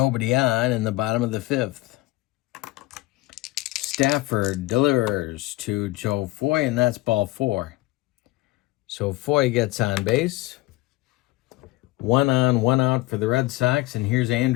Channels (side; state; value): right; quieter; 18.7 dB